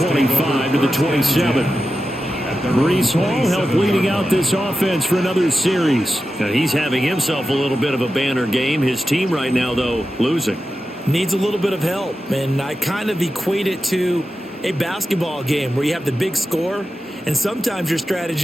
to the 27. Breece Hall helped leading out this offense for another series. Now he's having himself a little bit of a banner game. His team right now, though, losing. Needs a little bit of help, and I kind of equate it to a basketball game where you have the big score, and sometimes your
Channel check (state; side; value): normal; both; correlation 0.92